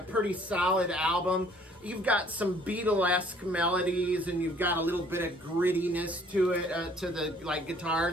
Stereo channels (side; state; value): both; normal; correlation 0.57